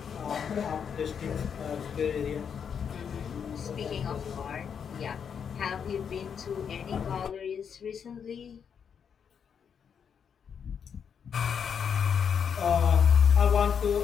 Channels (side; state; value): right; quieter; 7.2 dB